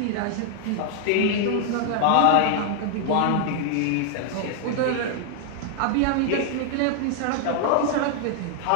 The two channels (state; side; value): different; both; correlation 0.00